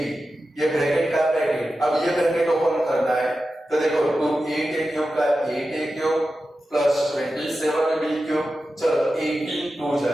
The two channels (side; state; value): both; normal; correlation 0.92